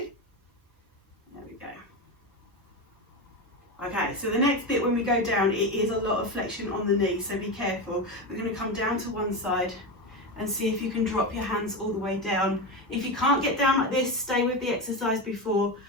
There we go. Okay, so the next bit when we go down, it is a lot of flexion on the knee, so be careful. We're going to come down to one side and see if you can drop your hands all the way down. If you can't get down like this, stay with the exercise before.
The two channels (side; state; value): both; normal; correlation 0.18